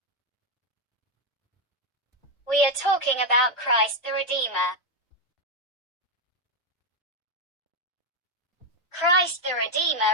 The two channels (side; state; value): both; normal; correlation 0.04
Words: We are talking about Christ the Redeemer. Christ the